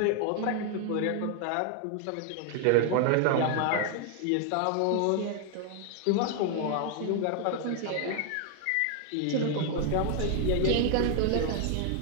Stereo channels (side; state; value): both; different; correlation 0.00